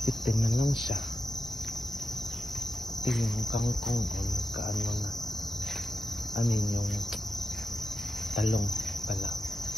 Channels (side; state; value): both; normal; correlation 0.89